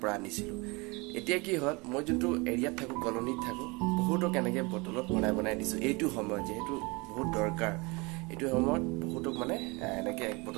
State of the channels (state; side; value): quieter; left; 26.8 dB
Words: পৰা আনিছিলোঁ এতিয়া কি হ'ল মই যোনটো এৰিয়াত থাকোঁ কলনীত থাকোঁ বহুতক এনেকৈ বটলত বনাই দিছোঁ এইটো সময়ত যিহেতু বহুত দৰকাৰ এইটো সময়ত বহুতক মানে এনেকৈ এক